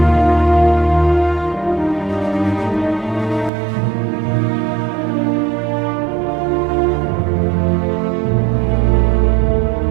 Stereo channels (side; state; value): left; drops out; at 3.5 s